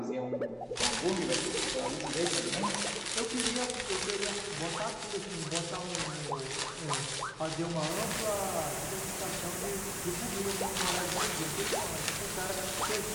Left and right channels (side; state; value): both; identical; correlation 1.00